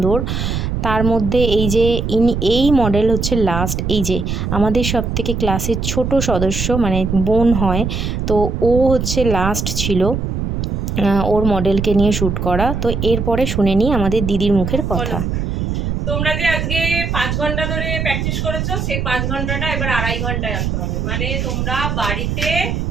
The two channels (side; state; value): right; noise; rumble, 2 dB below the sound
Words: তার মধ্যে এই মডেল হচ্ছে লাস্ট। এই যে আমাদের সবথেকে ক্লাসের ছোট সদস্য, মানে বোন হয়, তো ও হচ্ছে লাস্ট ছিল ওর মডেলকে নিয়ে শ্যুট করা। তো এরপরে শুনে নিই আমাদের দিদির মুখের কথা। তোমরা যে আজকে 5 ঘন্টা ধরে প্র্যাকটিস করেছো, সেই 5 ঘন্টাটা এবার 2.5 ঘন্টায় আনতে হবে। মানে তোমরা বাড়িতে